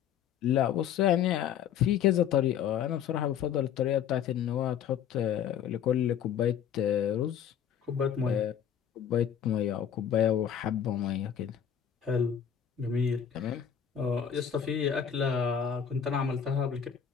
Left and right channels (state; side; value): quieter; right; 8.6 dB